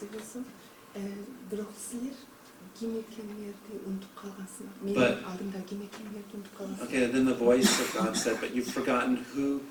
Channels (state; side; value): identical; both; correlation 1.00